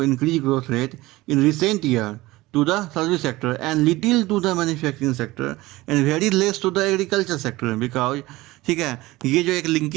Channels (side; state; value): left; quieter; 19.3 dB